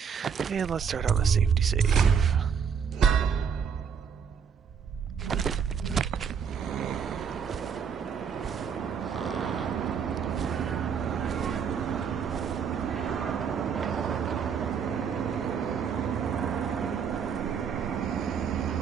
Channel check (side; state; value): left; quieter; 7.0 dB